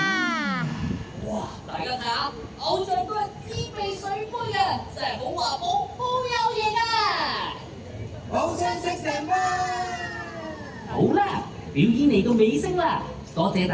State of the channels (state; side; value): identical; both; correlation 1.00